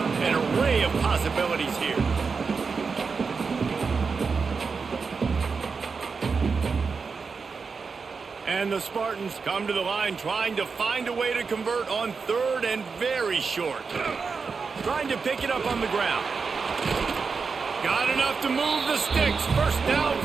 An array of possibilities here. And the Spartans come to the line trying to find a way to convert on 3rd and very short. Trying to pick it up on the ground. Got enough to move the sticks. First down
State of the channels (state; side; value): quieter; left; 5.1 dB